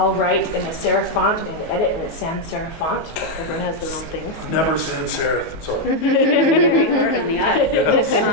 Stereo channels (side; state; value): right; late; 19 ms